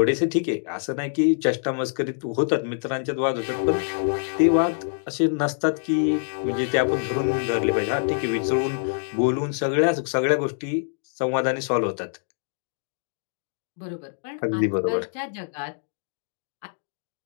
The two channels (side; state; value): right; silent; digital silence